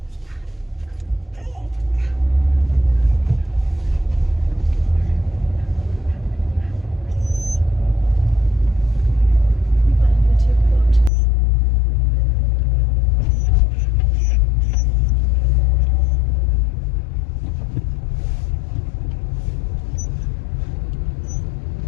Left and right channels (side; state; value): right; drops out; at 11.1 s